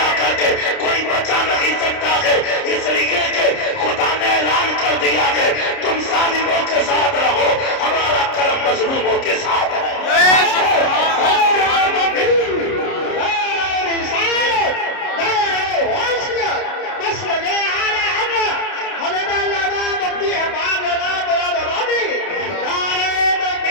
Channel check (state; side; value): late; right; 30 ms